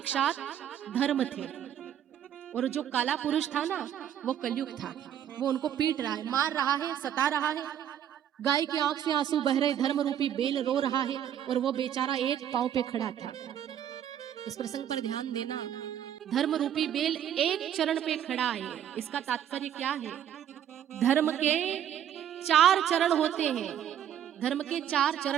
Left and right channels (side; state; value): left; quieter; 10.0 dB